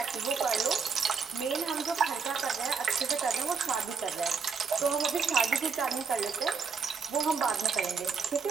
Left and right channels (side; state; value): left; quieter; 5.6 dB